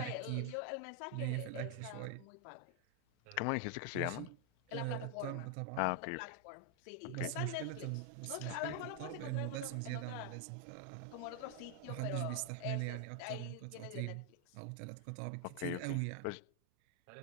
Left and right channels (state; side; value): different; both; correlation 0.00